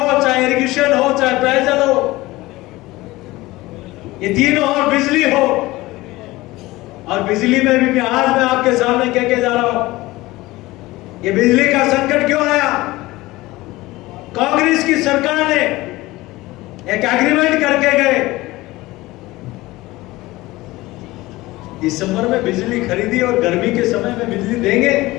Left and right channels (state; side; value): quieter; right; 19.3 dB